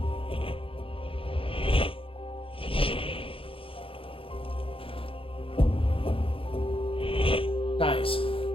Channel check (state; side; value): late; right; 0.26 ms